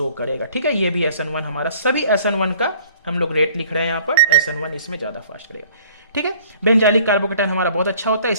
करेगा। ठीक है, ये भी SN1 हमारा सभी SN1 का हम लोग रेट लिख रहे हैं, यहां पर SN1 इसमें ज्यादा फास्ट करेगा। ठीक है, बेंजाइलिक कार्बोकैटायन हमारा बहुत अच्छा होता है,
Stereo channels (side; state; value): both; inverted; correlation -0.54